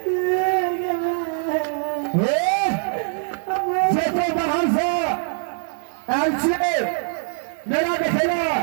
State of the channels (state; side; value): silent; left; 64 dB below the other